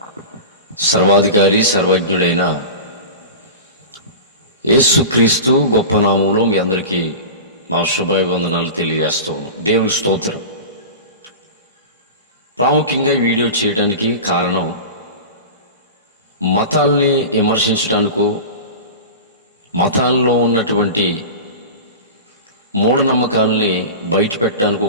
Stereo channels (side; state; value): both; inverted; correlation -0.31